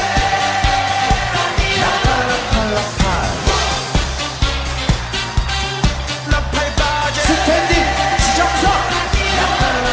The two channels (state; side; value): identical; both; correlation 1.00